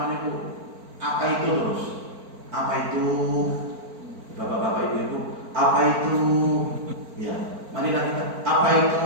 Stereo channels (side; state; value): left; late; 4.5 ms